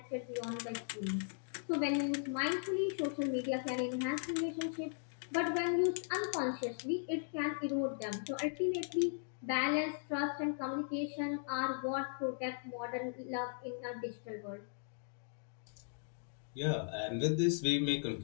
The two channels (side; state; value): right; silent; digital silence